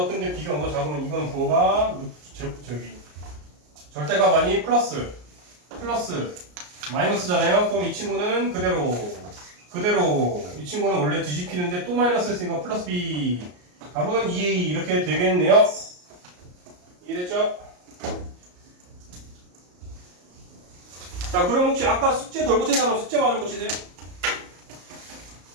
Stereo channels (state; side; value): late; left; 34 ms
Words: 큰데 B가 0보다 작으면 이건 부호가 절대값 아니 플러스 마이너스잖아요. 그럼 이 친구는 그대로 이 친구는 원래 뒤집히는데 또 마이너스 했으니까 플러스 B 답은 2A 이렇게 되겠네요. 이해됐죠? 자 그럼 혹시 아까 숙제 덜 고친 사람 숙제 마저 고치세요.